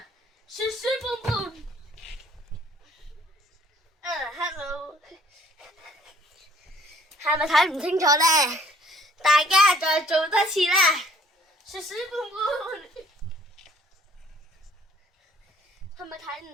是屎盆盆。Hello， 係咪睇唔清楚咧？大家再做多次啦。是屎盆盆。係咪睇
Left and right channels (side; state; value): both; normal; correlation 0.59